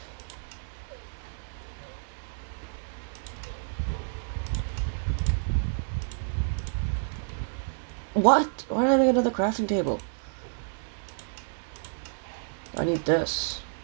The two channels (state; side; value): silent; left; digital silence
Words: What? Why did I make another crafting table? I need this.